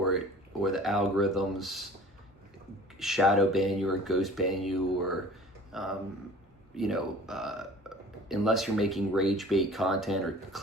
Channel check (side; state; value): both; normal; correlation 0.46